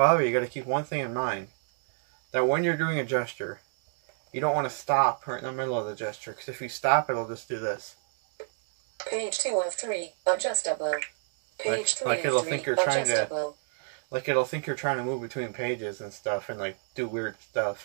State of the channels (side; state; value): left; silent; digital silence